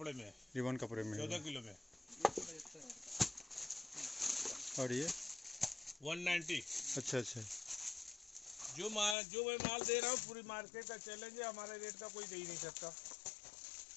में। 14 किलो में। और ये 190। अच्छा अच्छा, जो मैं माल दे रहा हूँ, पूरी मार्केट का चैलेंज है, हमारे रेट का कोई दे ही नहीं सकता।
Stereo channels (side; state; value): right; drops out; at 9.2 s